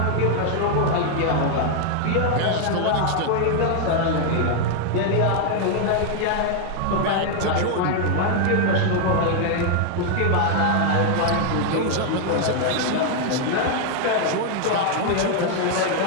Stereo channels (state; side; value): different; both; correlation 0.00